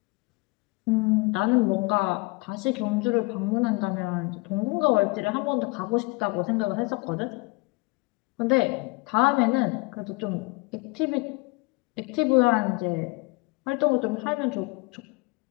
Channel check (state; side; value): quieter; right; 26.3 dB